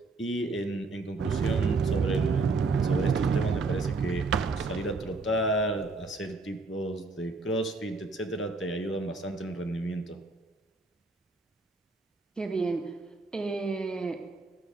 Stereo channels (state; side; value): quieter; left; 3.6 dB